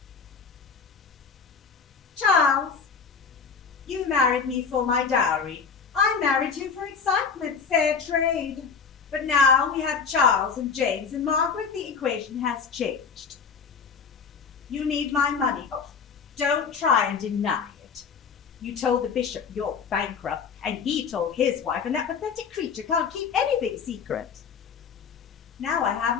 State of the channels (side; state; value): right; quieter; 5.9 dB